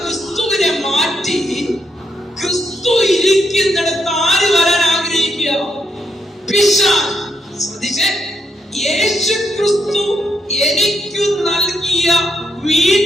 ക്രിസ്തുവിനെ മാറ്റി ക്രിസ്തു ഇരിക്കുന്നിടത്ത് ആര് വരാൻ ആഗ്രഹിക്കുക? പിശാച്. ശ്രദ്ധിച്ചേ, യേശു ക്രിസ്തു എനിക്ക് നൽകിയ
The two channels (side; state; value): both; normal; correlation 0.79